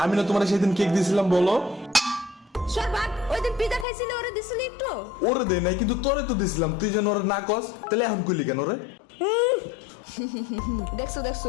আমি না তোমার সেদিন কেক দিয়েছিলাম বলো? সরবাক, ওই দিন পিজা খাইছিলে ওরে দিছিলি একটু? ওরে দে নাই, কিন্তু তোরে তো দিছিলাম, তুই যেন ওরে না কস, তাহলে এখন কইলি কেন রে? দেখছো দেখছো,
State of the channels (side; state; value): right; drops out; at 3.9 s